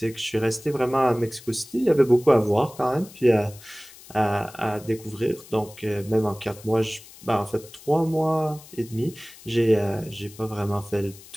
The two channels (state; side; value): noise; left; hiss, 20 dB below the sound